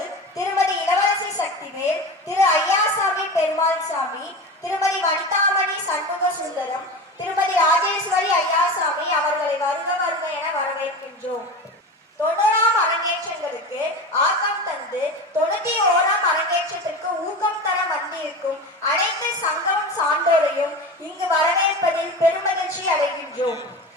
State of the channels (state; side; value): normal; both; correlation 0.28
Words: திருமதி இளவரசி சக்திவேல், திரு ஐயாசாமி பெருமாள் சாமி, திருமதி வனிதாமணி சண்முக சுந்தரம், திருமதி ராஜேஸ்வரி ஐயாசாமி அவர்களை வருக வருக என வரவேற்கின்றோம். 90ஆம் அரங்கேற்றங்களுக்கு ஆக்கம் தந்து 91ஆம் அரங்கேற்றத்திற்கு ஊக்கம் தர வந்திருக்கும் அனைத்து சங்கமம் சான்றோரையும் இங்கு வரவேற்பதில் பெருமகிழ்ச்சி அடைகின்றோம்.